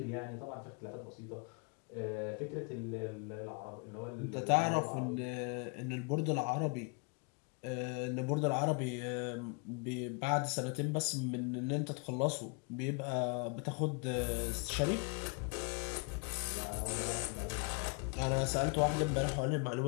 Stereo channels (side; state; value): right; quieter; 33.2 dB